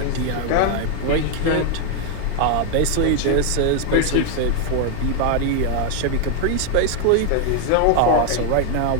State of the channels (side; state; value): both; different; correlation 0.01